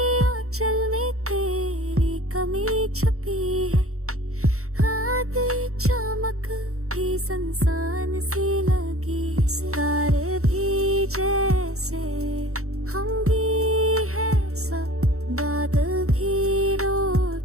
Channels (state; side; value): late; left; 0.64 ms